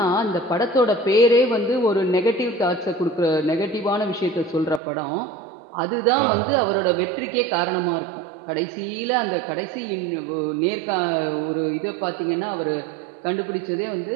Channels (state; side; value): drops out; left; at 4.8 s